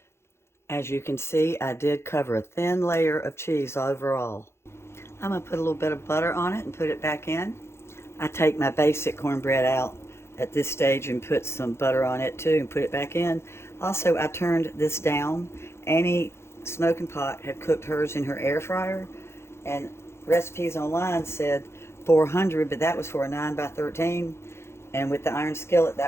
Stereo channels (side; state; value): right; late; 0.12 ms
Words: As you can see, I did cover a thin layer of cheese overall. I'm going to put a little bit of butter on it and put it back in. I take my basic cornbread out at this stage and put some butter on it too and put it back in. Also, I turned this down. Annie Smoking Pot had cooked hers in her air fryer, and recipes online said 400, but that was for a 9 by 13. And with the iron skillet,